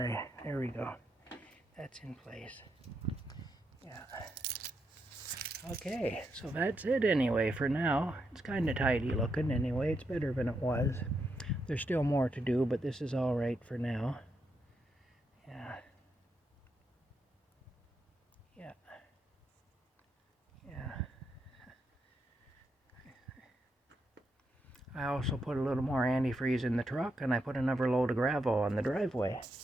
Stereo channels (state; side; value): normal; both; correlation 0.82